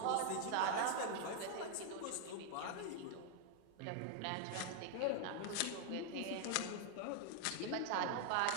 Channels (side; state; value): both; different; correlation 0.00